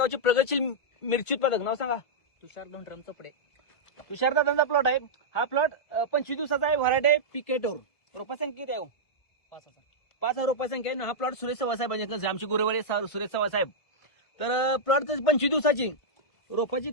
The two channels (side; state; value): right; late; 1.5 ms